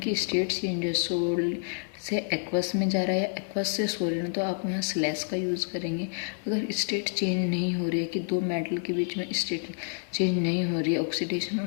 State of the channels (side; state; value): right; silent; digital silence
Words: स्टेट चेंज है, सॉलिड से एक्वस में जा रहा है या एक्वस से सॉलिड, तो आप यहाँ स्लैश का यूज़ करेंगे। अगर स्टेट चेंज नहीं हो रही है कि दो मेटल के बीच में स्टेट चेंज नहीं हो रही है, ऑक्सीडेशन